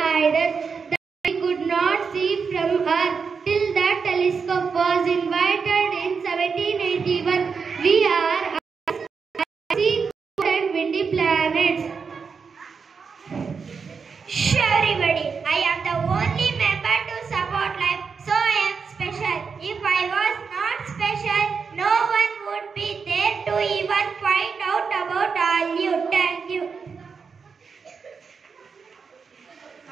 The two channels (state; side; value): quieter; left; 5.5 dB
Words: that we could not see from Earth till the telescope was invented in 1781. We are icy, cold and windy planets. Sure, everybody, I am the only member to support life, so I am special. If I was not special, no one would be there to even